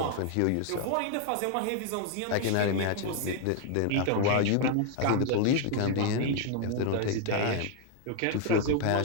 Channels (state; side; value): different; both; correlation 0.00